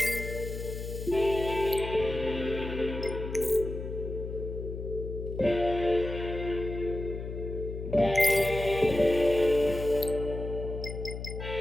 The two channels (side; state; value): left; noise; hum, 7 dB below the sound